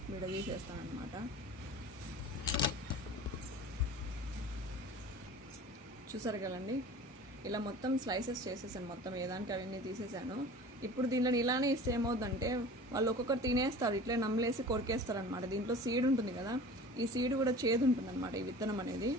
విడదీసేస్తాను అనమాట. చూసారు కదండి, ఇలా మొత్తం స్లైసెస్ చేసేసాను, మొత్తం ఏదానికి అవన్నీ తీసేసాను. ఇప్పుడు దీనిలో ఇలానే ఇస్తే ఏమవుతుందంటే వాళ్ళు ఒక్కొక్కరు తినేస్తారు, ఇట్లే నమ్మలేసి కొరికేస్తారు అనమాట. దీంట్లో సీడ్ ఉంటుంది కదా, ఈ సీడ్ కూడా చేదు ఉంటుంది అనమాట, ఈ విత్తనం అనేది.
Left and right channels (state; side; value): normal; both; correlation 0.40